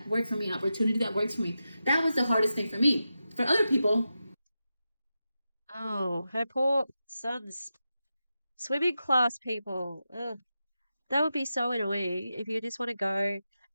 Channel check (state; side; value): inverted; both; correlation -0.90